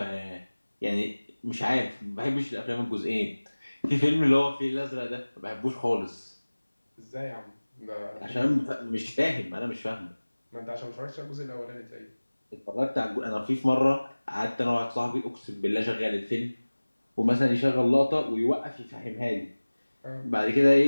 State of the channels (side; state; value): both; inverted; correlation -1.00